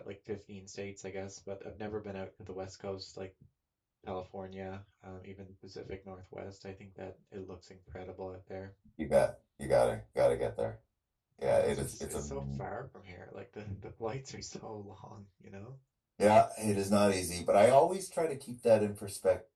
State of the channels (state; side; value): identical; both; correlation 1.00